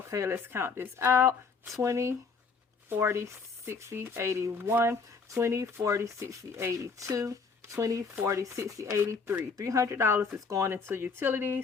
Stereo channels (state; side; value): quieter; right; 5.0 dB